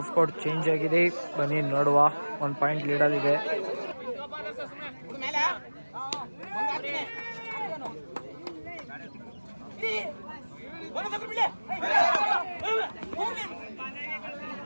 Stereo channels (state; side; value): inverted; both; correlation -1.00